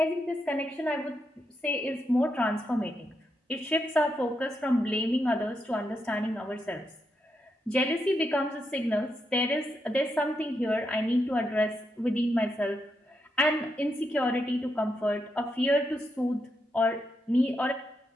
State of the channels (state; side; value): normal; both; correlation 0.83